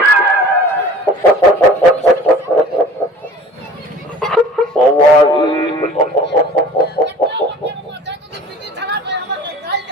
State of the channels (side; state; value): both; normal; correlation 0.45